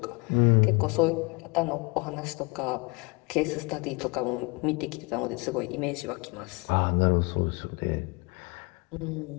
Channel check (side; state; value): right; quieter; 28.0 dB